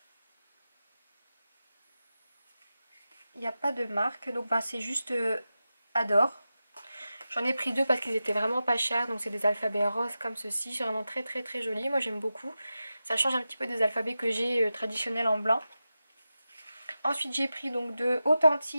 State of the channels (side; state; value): both; inverted; correlation -0.93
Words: Il n'y a pas de marque, donc bah, c'est juste Adore. J'en ai pris deux parce qu'ils étaient vraiment pas chers, donc c'est des alphabets roses comme ceci, c'est vraiment très très très joli, moi j'aime beaucoup. Ça change un petit peu des alphabets que j'ai traditionnels en blanc. Ensuite j'ai pris donc de